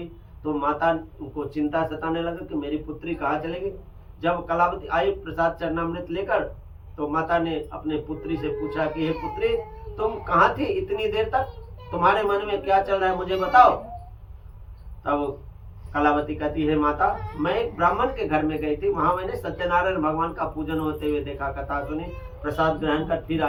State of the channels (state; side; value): identical; both; correlation 1.00